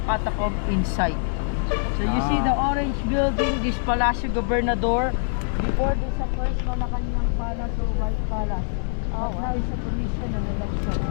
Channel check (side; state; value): right; silent; digital silence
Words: catacomb inside. So you see the orange building, this Palacio Gobernador. Before this the first Malacanang Palace or White Palace. But now it's a commission and election.